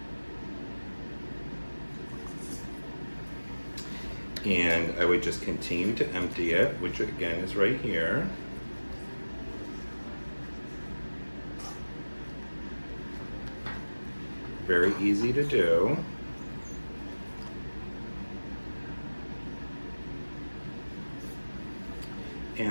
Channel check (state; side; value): inverted; both; correlation -1.00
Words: And I would just continue to empty it, which again is right here. Very easy to do.